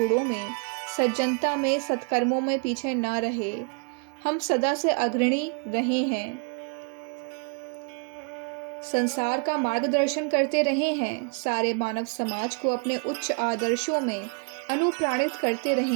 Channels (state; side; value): quieter; left; 38.4 dB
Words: में, सज्जनता में, सत्कर्मों में पीछे ना रहे। हम सदा से अग्रणी रहे हैं, संसार का मार्गदर्शन करते रहे हैं, सारे मानव समाज को अपने उच्च आदर्शों में अनुप्राणित करते